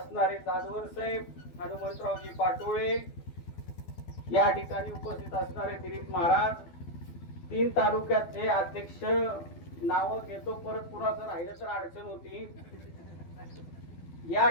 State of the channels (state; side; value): late; right; 12 ms